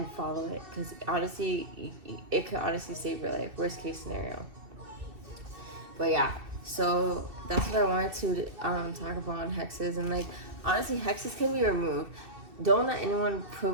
follow it, because honestly, it could honestly save your life. Worst case scenario. But yeah, so that's what I wanted to talk about on hexes. And like honestly, hexes can be removed. Don't let anyone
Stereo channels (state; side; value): late; left; 2.6 ms